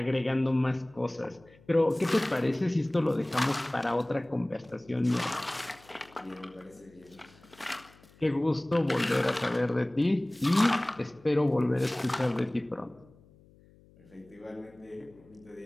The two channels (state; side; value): noise; left; hum, 27 dB below the sound